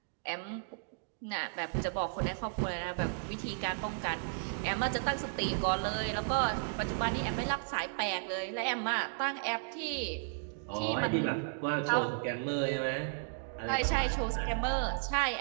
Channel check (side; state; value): left; silent; digital silence